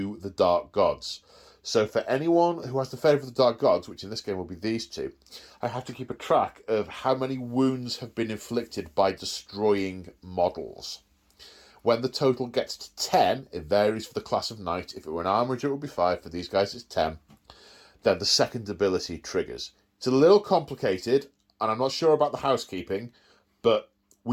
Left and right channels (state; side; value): identical; both; correlation 1.00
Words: the Dark Gods. So for anyone who has the Favour of the Dark Gods, which in this game will be these 2, I have to keep a track of how many wounds have been inflicted by destroying models. When the total gets to 10, it varies for the class of knight. If it were an armourer, it would be 5. For these guys, it's 10. Then the second ability triggers. It's a little complicated, and I'm not sure about the housekeeping, but